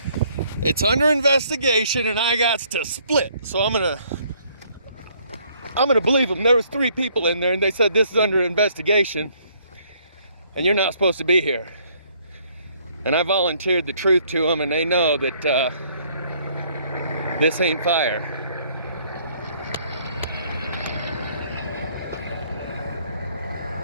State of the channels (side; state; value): both; inverted; correlation -0.64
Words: It's under investigation and I got to split. So I'm gonna believe them. There was 3 people in there and they said this is under investigation and you're not supposed to be here. And I volunteered the truth to them and they know that this ain't fire.